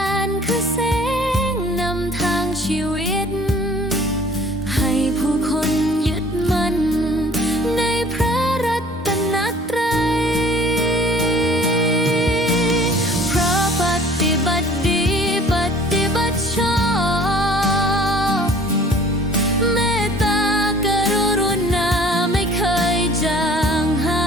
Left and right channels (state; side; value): normal; both; correlation 0.51